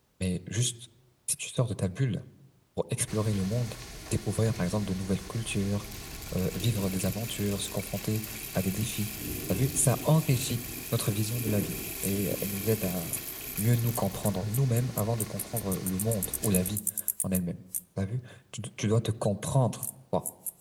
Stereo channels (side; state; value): both; identical; correlation 1.00